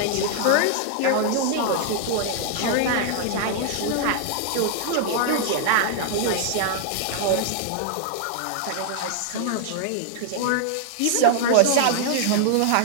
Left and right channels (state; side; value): different; both; correlation 0.00